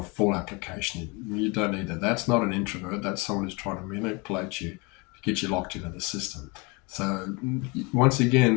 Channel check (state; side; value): quieter; right; 28.0 dB